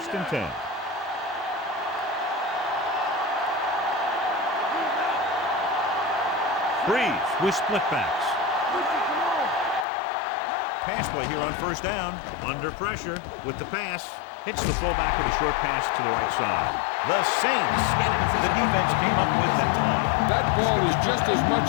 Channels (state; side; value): drops out; right; at 9.9 s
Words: and 10. Breeze with split backs. Pass play here on 1st down. Under pressure with the pass. Hits the fullback with a short pass to the right side. The Saints get it. The defense came up with that one. That ball is just as